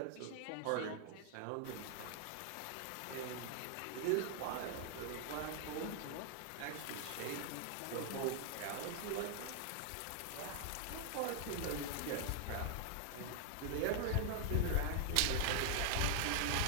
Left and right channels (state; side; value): different; both; correlation 0.00